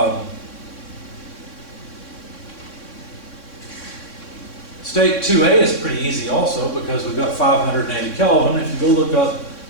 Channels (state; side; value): late; right; 3.6 ms